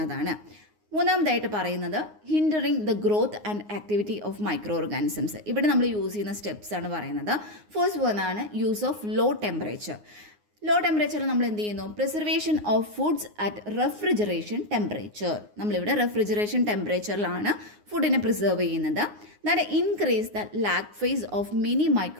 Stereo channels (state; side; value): late; left; 9.6 ms